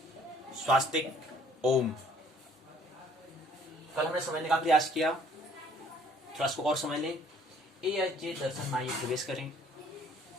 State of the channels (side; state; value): both; normal; correlation 0.58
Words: स्वास्तिक ओम। कल हमने समझने का प्रयास किया, थोड़ा इसको और समझ लें। ए दर्शन माइए प्रवेश करें।